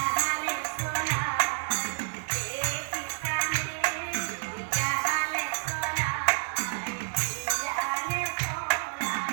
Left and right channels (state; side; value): silent; left; digital silence